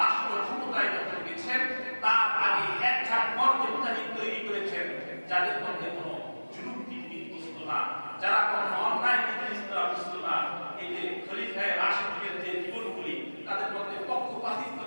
ক্ষমতায় যখন গেছেন, তার আগে একটা মর্যাদাহীন তৈরি করেছেন, যাদের মধ্যে কোনো জুলুম বিদ্যুৎ না, যারা কোনো অন্যায় বিদ্যুৎ না। এই যে খলিফায়ে রাশিদের যে জীবনগুলি, তাদের মধ্যে পক্ষপাতিত্ব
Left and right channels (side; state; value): both; inverted; correlation -1.00